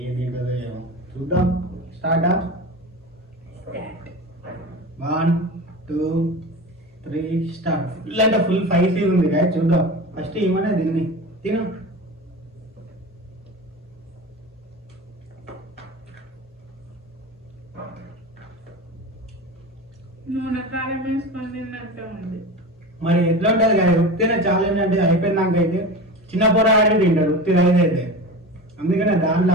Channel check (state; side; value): normal; both; correlation 0.30